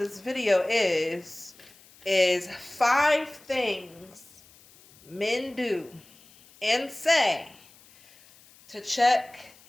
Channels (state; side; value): noise; left; hiss, 26 dB below the sound